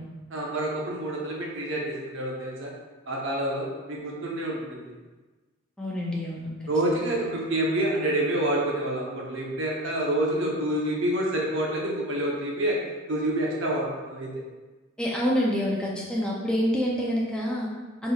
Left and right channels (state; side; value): normal; both; correlation 0.35